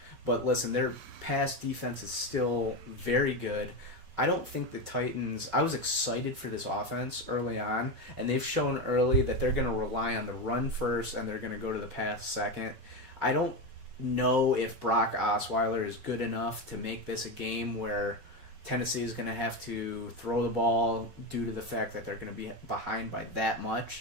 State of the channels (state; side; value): late; left; 5.3 ms